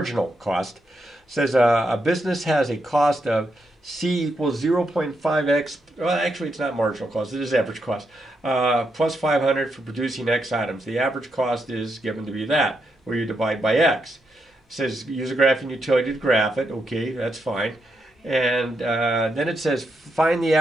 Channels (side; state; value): both; normal; correlation 0.82